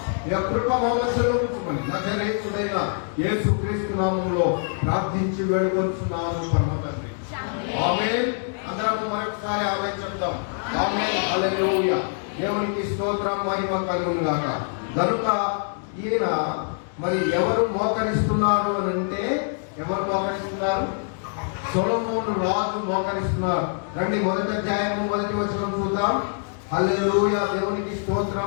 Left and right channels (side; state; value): right; silent; 62 dB below the other